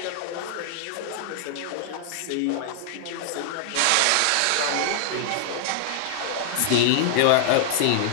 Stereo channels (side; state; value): both; different; correlation 0.00